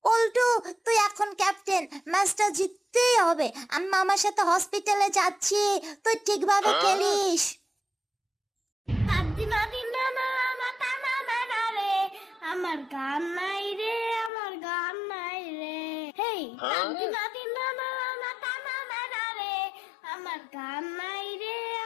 পল্টু, তুই এখন ক্যাপ্টেন, ম্যাচটা জিততেই হবে। আমি মামার সাথে হসপিটালে যাচ্ছি, তুই ঠিকভাবে খেলিস। আমার গান নাই রে, আমার গান নাই রে, হেই আমার গান নাই রে,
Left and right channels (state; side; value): drops out; right; at 14.3 s